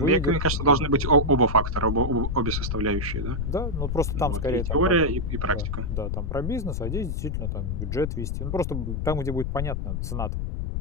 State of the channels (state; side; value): noise; left; rumble, 2 dB below the sound